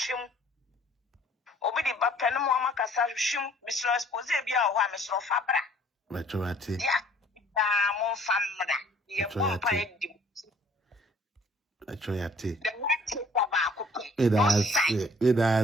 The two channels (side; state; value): both; normal; correlation 0.57